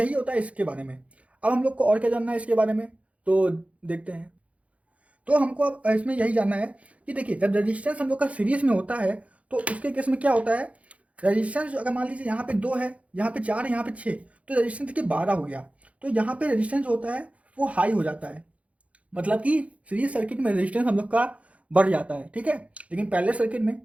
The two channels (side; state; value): left; late; 0.065 ms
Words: होता है इसके बारे में। अब हम लोग को और क्या जानना है इसके बारे में, तो देखते हैं। तो हमको अब इसमें यही जानना है कि देखिए जब रजिस्टेंस हम लोग का सीरीज में होता है तो उसके केस में क्या होता है, रजिस्टेंस अगर मान लीजिए यहाँ पे 2 है, यहाँ पे 4 है, यहाँ पे 6, तो रजिस्टेंस देखिए 12 हो गया। तो यहाँ पे रजिस्टेंस जो होता है वो हाई हो जाता है, मतलब कि सीरीज सर्किट में रेजिस्टेंस हम लोग का बढ़ जाता है। ठीक है, लेकिन पैरेलल सर्किट में